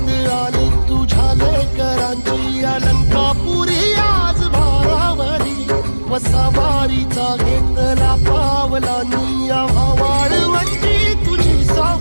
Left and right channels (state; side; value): inverted; both; correlation -1.00